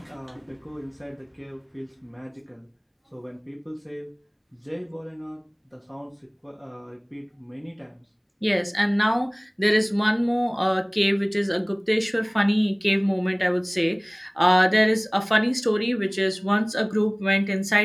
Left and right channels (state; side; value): identical; both; correlation 1.00